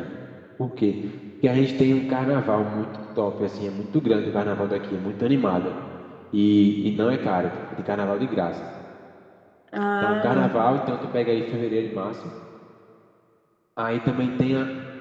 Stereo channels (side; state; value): both; identical; correlation 1.00